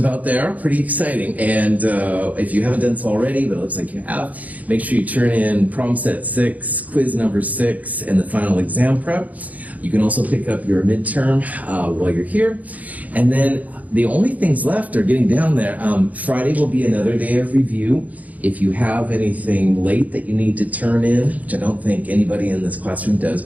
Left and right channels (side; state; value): left; late; 0.075 ms